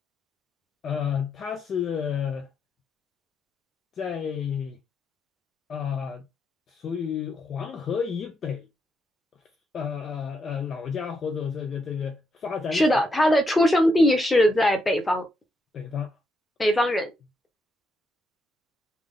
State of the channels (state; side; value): normal; both; correlation 0.80